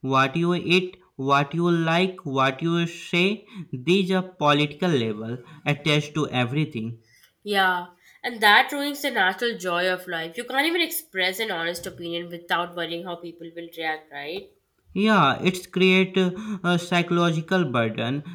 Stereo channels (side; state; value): both; identical; correlation 1.00